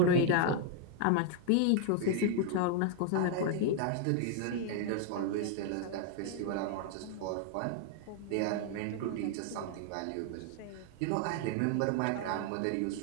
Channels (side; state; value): both; different; correlation 0.00